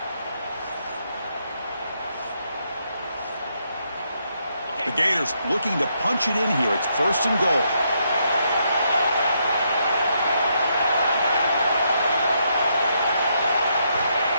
The Gators looking to punch it in here. It's 1st and goal.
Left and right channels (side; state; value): both; inverted; correlation -0.77